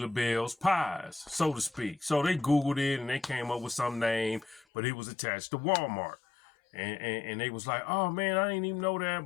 pies, so to speak. So they Googled it and they came up with some name, but it was attached to Walmart. And they was like, oh man, I didn't even know that,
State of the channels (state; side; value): drops out; right; at 4.7 s